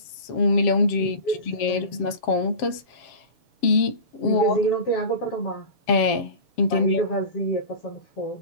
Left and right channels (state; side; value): late; right; 7.3 ms